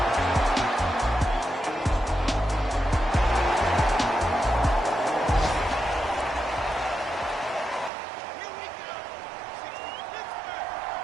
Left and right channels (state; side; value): drops out; left; at 7.9 s